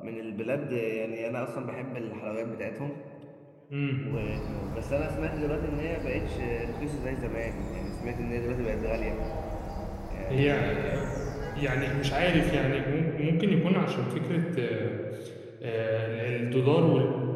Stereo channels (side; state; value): both; identical; correlation 1.00